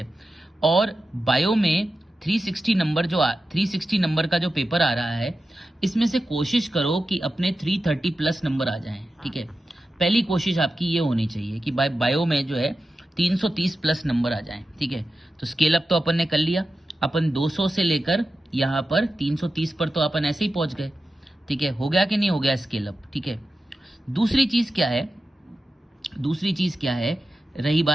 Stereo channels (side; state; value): both; normal; correlation 0.92